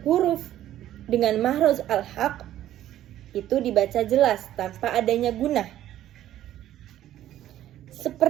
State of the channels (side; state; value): left; quieter; 12.7 dB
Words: huruf dengan makhraj al-haq itu dibaca jelas tanpa adanya gunah.